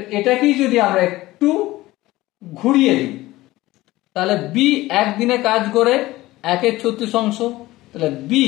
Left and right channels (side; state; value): right; quieter; 17.9 dB